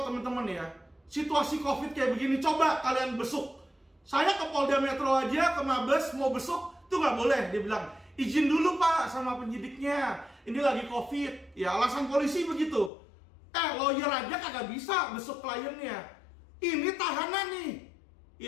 teman-teman ya, situasi COVID kayak begini, coba kalian besuk. Saya ke Polda Metro aja, ke Mabes, mau besuk, itu nggak boleh. Dia bilang, izin dulu Pak sama penyidiknya, ini lagi COVID. Ya, alasan polisi begitu. Lawyer aja kagak bisa besuk kliennya. Ini tahanan nih,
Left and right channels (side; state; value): right; drops out; at 12.9 s